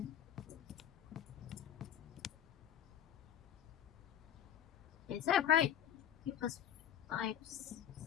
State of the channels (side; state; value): right; quieter; 10.2 dB